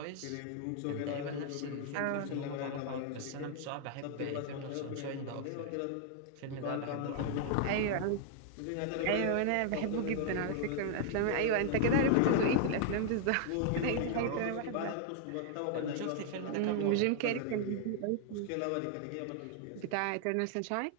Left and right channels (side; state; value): both; different; correlation -0.01